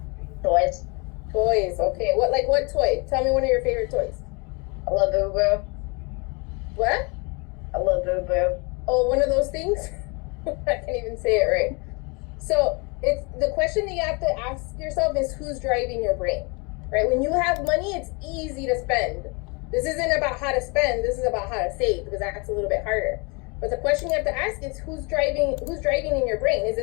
Toys. Toys, okay. What toy? Tell me one of your favorite toys. I love Boo Boo. What? I love Boo Boo. Oh, one of those things? I can't even say it right. So it's the question that you have to ask yourself is who's driving your brain, right? When you have money, it's easy to spend. This isn't about how to spend. This is about how to save, because that's a little bit harder. But the question you have to ask is who's driving in your brain? Is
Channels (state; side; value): quieter; right; 30.5 dB